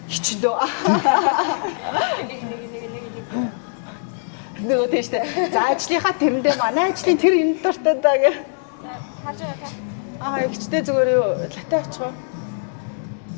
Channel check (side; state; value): right; silent; digital silence